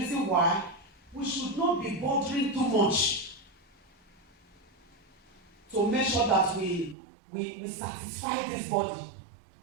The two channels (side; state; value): left; drops out; at 7.0 s